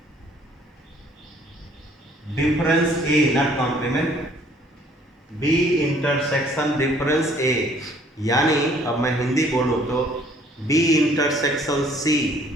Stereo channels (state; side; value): normal; both; correlation 0.59